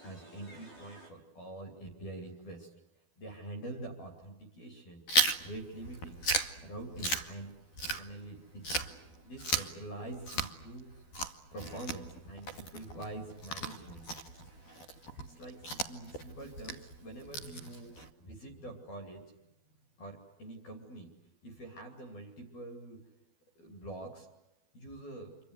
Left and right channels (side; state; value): right; late; 12 ms